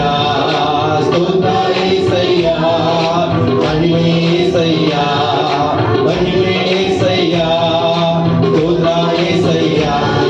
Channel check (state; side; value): identical; both; correlation 1.00